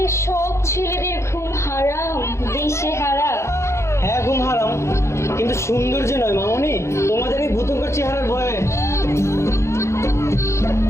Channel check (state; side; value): late; right; 0.13 ms